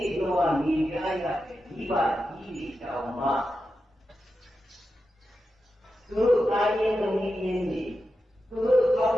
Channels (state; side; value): normal; both; correlation 0.90